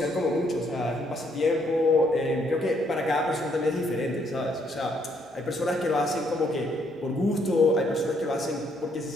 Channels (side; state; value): both; normal; correlation 0.70